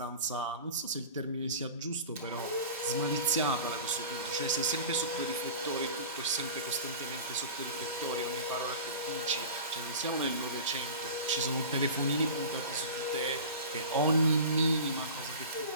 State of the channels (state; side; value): inverted; both; correlation -0.35